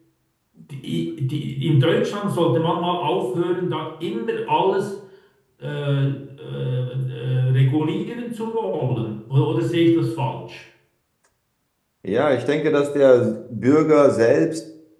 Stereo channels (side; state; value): both; identical; correlation 1.00